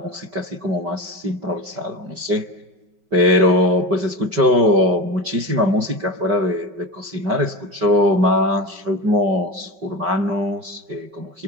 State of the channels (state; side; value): late; left; 5.3 ms